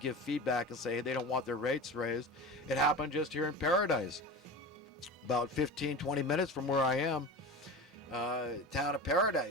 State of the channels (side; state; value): both; normal; correlation 0.30